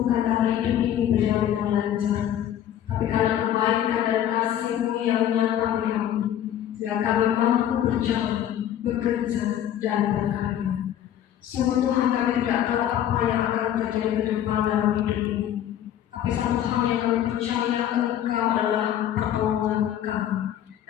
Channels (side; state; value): right; quieter; 11.0 dB